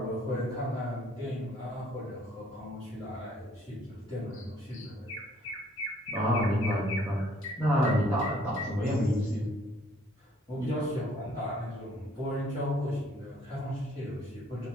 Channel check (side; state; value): both; normal; correlation 0.61